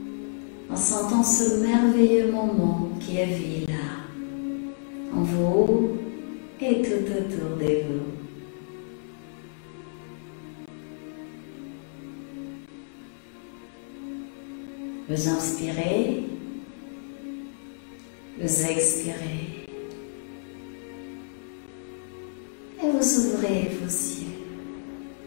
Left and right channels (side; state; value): right; silent; 59 dB below the other